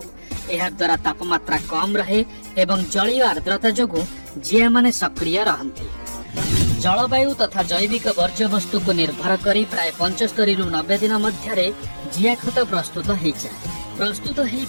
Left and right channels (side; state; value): both; inverted; correlation -1.00